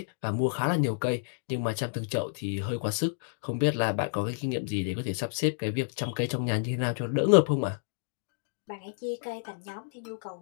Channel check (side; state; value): right; silent; digital silence